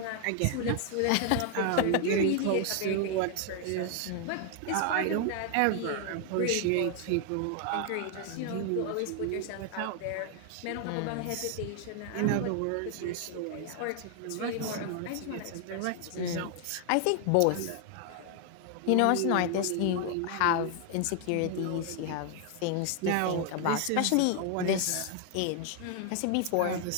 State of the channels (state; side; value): different; both; correlation 0.00